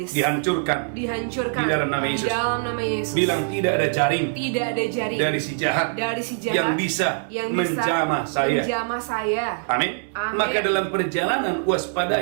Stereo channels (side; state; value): left; silent; 63 dB below the other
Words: dihancurkan. dihancurkan Di dalam nama Yesus. Di dalam nama Yesus. Bilang tidak ada jaring Tidak ada jaring dari si jahat dari si jahat yang bisa menjamah saya. menjamah saya. Amin. Amin. Maka dalam perjalanan